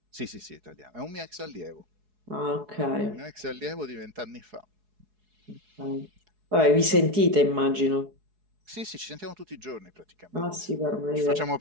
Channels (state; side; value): late; left; 4.7 ms